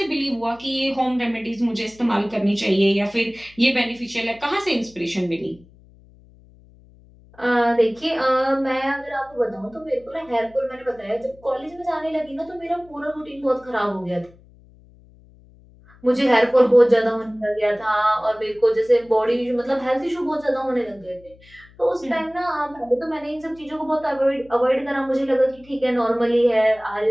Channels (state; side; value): noise; left; hum, 26 dB below the sound